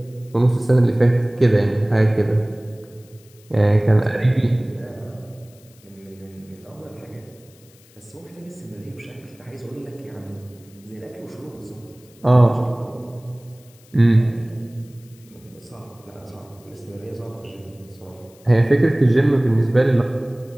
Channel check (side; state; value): left; noise; hiss, 28 dB below the sound